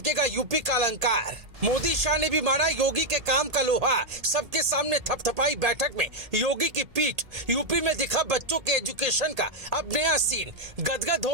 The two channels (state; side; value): late; left; 1.8 ms